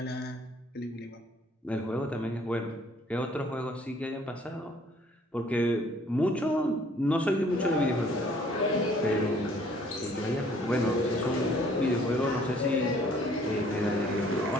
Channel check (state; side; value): normal; both; correlation 0.59